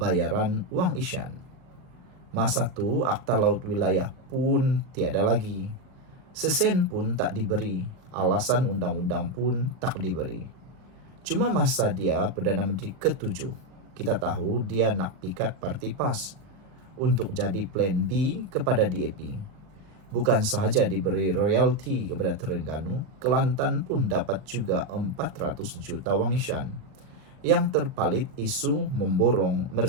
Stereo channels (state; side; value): late; left; 39 ms